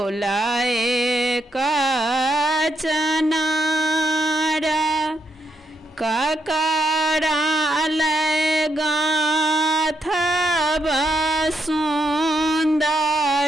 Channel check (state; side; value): normal; both; correlation 0.79